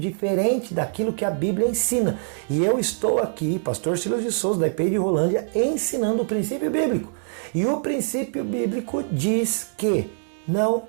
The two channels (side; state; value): left; silent; digital silence